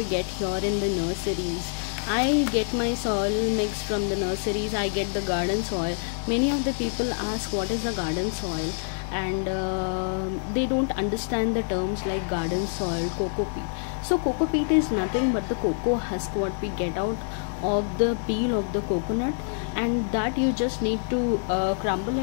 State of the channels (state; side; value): silent; right; 60 dB below the other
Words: get here in the nurseries. I get my soil mix from the nurseries. I get the garden soil. Many of the people ask what is the garden soil. and they don't understand the terms like garden soil, cocoa peat. So cocoa peat is nothing but the cocoa husk what we get out of the peel of the coconut, and that you just need to crumble